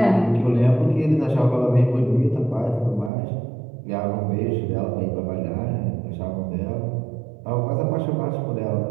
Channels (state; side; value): drops out; left; at 3.1 s